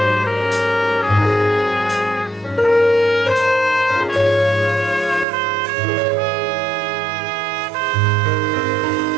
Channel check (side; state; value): left; drops out; at 5.2 s